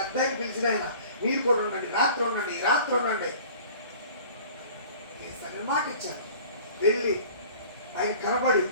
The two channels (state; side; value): inverted; both; correlation -0.46